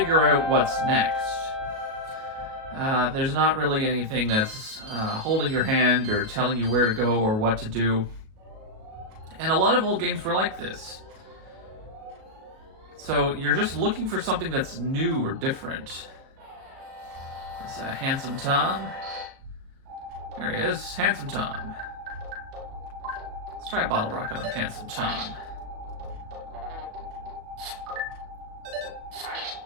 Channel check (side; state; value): left; late; 37 ms